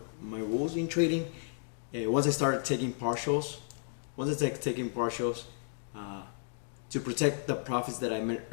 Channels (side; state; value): right; silent; digital silence